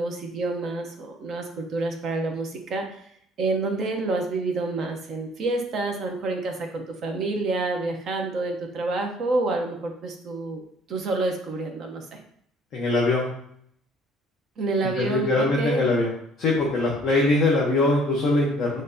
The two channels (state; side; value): normal; both; correlation 0.57